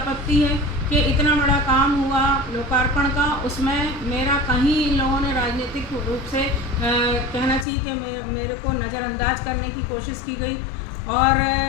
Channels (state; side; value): drops out; right; at 7.7 s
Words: है कि इतना बड़ा काम हुआ लोकार्पण का, उसमें मेरा कहीं इन लोगों ने राजनीतिक रूप से कहना चाहिए कि मेरे को नज़रअंदाज करने की कोशिश की गई। और